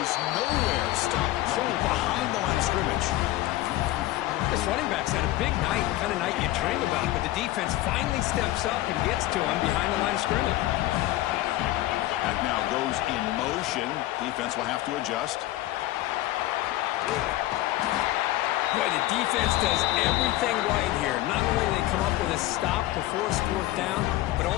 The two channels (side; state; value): right; quieter; 16.1 dB